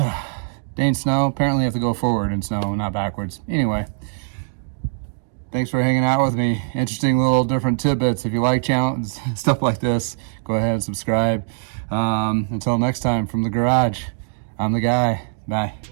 Dang snow. Apparently you have to go forward in snow, not backwards. Anyway, thanks for hanging out with me. Interesting little different tidbits. If you like channels, stuff like this, go ahead and subscribe. Until next time, from the garage, I'm the guy. Bye.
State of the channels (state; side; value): silent; left; digital silence